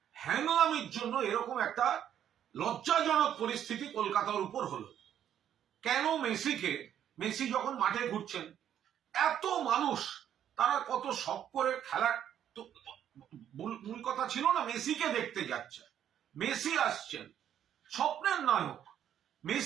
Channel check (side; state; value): left; quieter; 10.0 dB